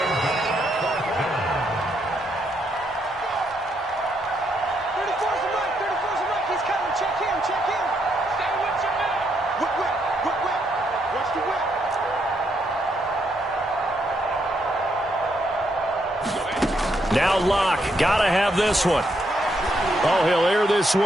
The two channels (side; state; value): both; normal; correlation 0.76